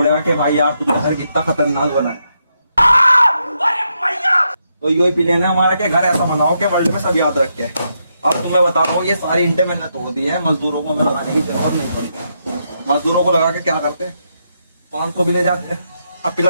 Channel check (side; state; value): both; inverted; correlation -0.81